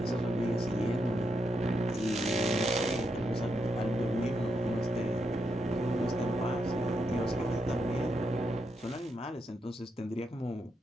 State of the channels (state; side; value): normal; both; correlation 0.81